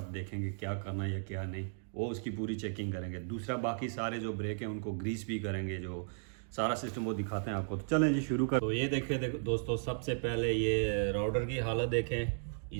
देखेंगे क्या करना है या क्या नहीं, वो उसकी पूरी चेकिंग करेंगे। दूसरा बाकी सारे जो ब्रेक हैं उनको ग्रीस भी करेंगे, जो सारा सिस्टम वो दिखाते हैं आपको। तो चलें जी शुरू कर। तो ये देखें, देखो दोस्तों, सबसे पहले ये राउडर की हालत देखें,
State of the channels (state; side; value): silent; left; digital silence